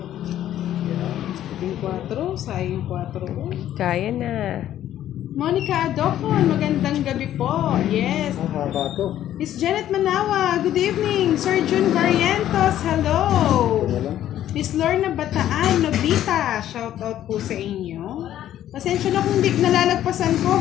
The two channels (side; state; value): right; quieter; 12.0 dB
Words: Yan. Yung 4, sayang 4. Kaya na. Monica Adocon, magandang gabi po. Yes. Ah, haba to. Miss Janet Manawa, good evening. Sir Jun Barrientos, hello. Ito na lang. Miss Lorna Bataan, Nobita, shout out po sa inyo. Pasensya na kung di nalalagpasan ko,